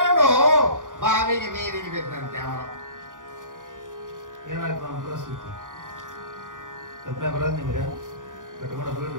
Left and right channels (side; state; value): left; late; 0.88 ms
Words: ಬಾವಿಗೆ ನೀರಿಗೆ ಬಿದ್ದಂತೆ. ಅವನು ಏನಾಯ್ತು ಅವನ ಪರಿಸ್ಥಿತಿ? ಕಲ್ಪನೆ ಬರೋದು ನಿಮ್ಗೆ? ಕಟ್ಕೊಂಡು